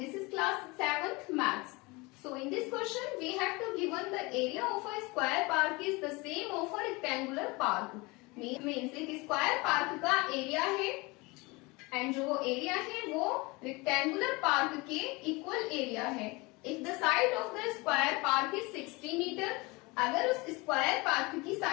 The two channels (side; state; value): right; quieter; 24.9 dB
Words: is class 7th maths. So in this question we have to given the area of a square park is the same of a rectangular park. Means एक square park का area है and जो area है वो rectangular park के equal area है. If the side of the square park is 60 meter, अगर उस स्क्वायर पार्क की